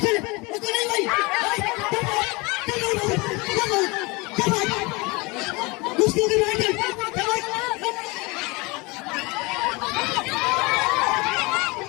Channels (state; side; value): quieter; right; 25.6 dB